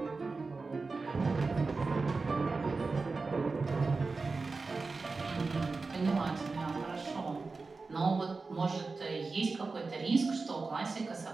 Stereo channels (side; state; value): left; quieter; 4.0 dB